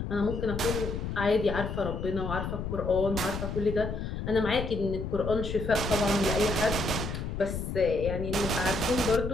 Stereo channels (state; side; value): noise; left; rumble, 5 dB below the sound